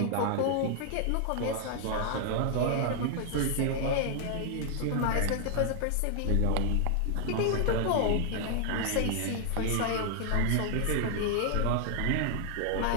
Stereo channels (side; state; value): both; different; correlation 0.00